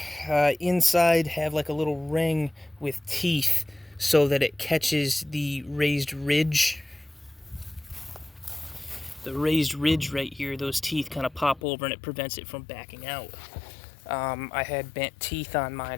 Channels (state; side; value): drops out; right; at 11.6 s